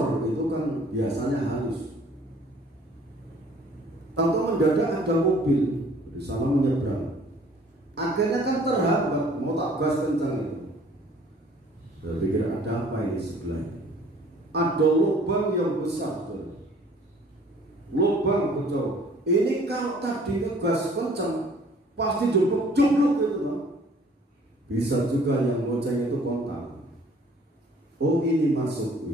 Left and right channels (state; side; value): normal; both; correlation 0.55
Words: itu kan biasanya halus. Tahu mendadak ada mobil di sana menyeberang. Akhirnya kan terhambat, mau tak gas kencang itu. Saya pikir ada apa ini sebelah? Ada lubang yang besar, lubang bocor. Ini kalau tadi gas kencang pasti jumluk gitu, bisa juga yang boceng itu kontak. Oh, ini